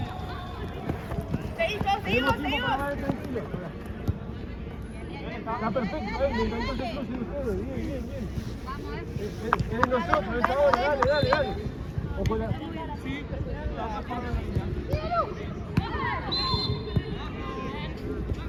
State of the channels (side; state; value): both; identical; correlation 1.00